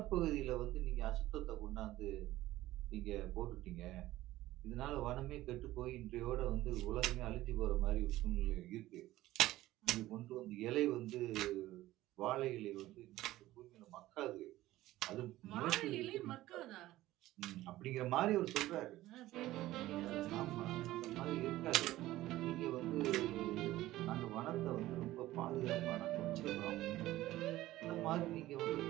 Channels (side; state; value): left; quieter; 16.0 dB